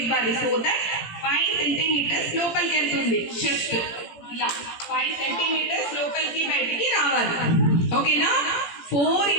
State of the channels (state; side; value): late; right; 17 ms